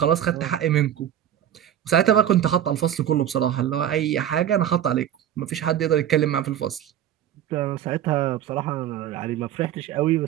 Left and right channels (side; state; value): left; quieter; 10.7 dB